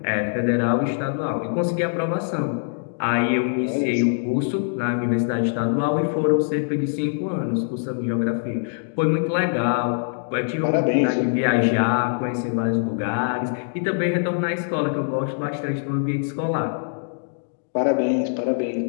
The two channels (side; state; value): right; silent; digital silence